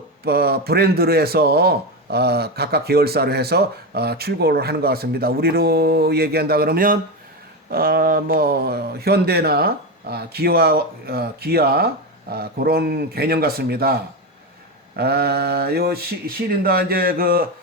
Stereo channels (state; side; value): normal; both; correlation 0.15